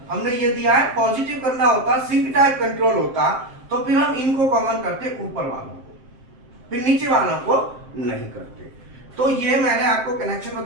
हमने ये दिया है पॉजिटिव करना होता, सिंक टाइप कंट्रोल होता, तो फिर हम इनको कॉमन करते ऊपर वालों को, फिर नीचे वालों को नहीं करते। तो ये मैंने आपको कनेक्शन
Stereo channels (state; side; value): late; left; 7.6 ms